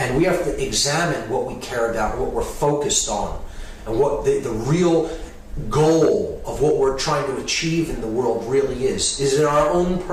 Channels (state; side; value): identical; both; correlation 1.00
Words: we have to examine what we care about, what we're focused on, and what the real goal of what we're trying to achieve in the world really is. Is it our own